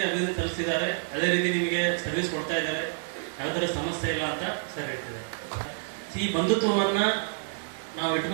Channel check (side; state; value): left; silent; digital silence